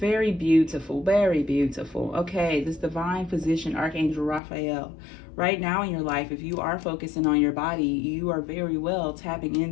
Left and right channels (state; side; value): drops out; right; at 4.4 s